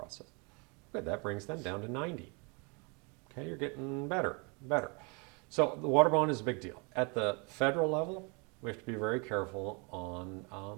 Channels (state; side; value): quieter; left; 31.9 dB